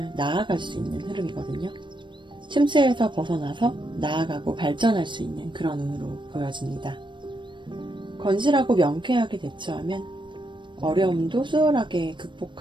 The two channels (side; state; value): left; late; 0.23 ms